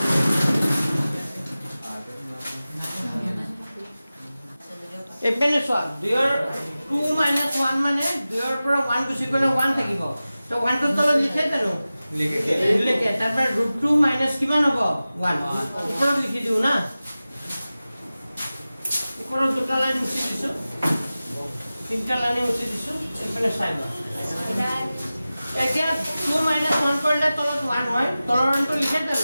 এপেনে সোয়া 2 - 1 মানে 2 ৰ পৰা 1 গুছি গলে 1 থাকিব তো 1 টো তলত লিখে জানো লিখে তাৰপৰ √2 - কিমান হ'ব 1 ওপৰত লিখি দিও না ওপৰত দুটা লাইন মুছি দিছো তিনটা লাইন মুছি দিছো এপেনে চাই লও এতিয়া 2 - 1 কৰিলে তলত 1 হয় তলৰটো লিখে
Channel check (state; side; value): inverted; both; correlation -0.96